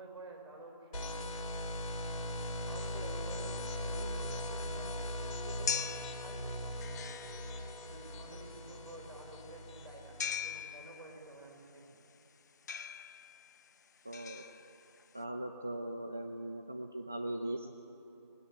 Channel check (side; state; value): both; inverted; correlation -0.46